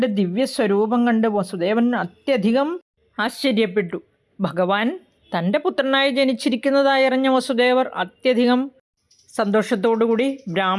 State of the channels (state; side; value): identical; both; correlation 1.00